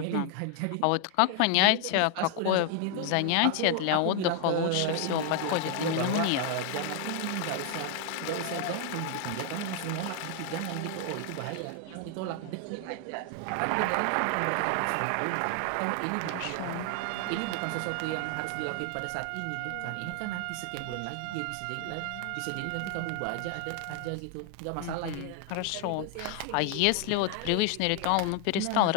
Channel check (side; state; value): both; different; correlation 0.00